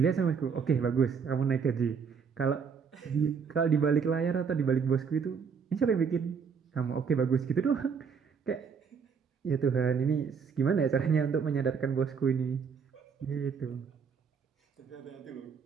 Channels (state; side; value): quieter; left; 6.2 dB